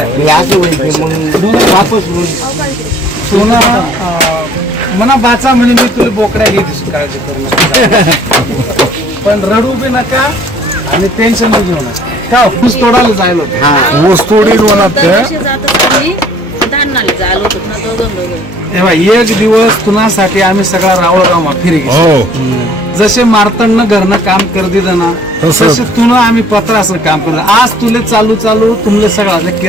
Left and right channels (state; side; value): normal; both; correlation 0.56